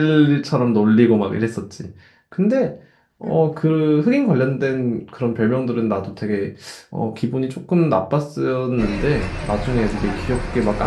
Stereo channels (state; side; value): identical; both; correlation 1.00